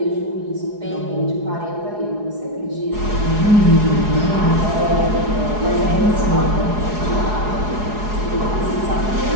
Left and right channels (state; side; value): late; left; 4.8 ms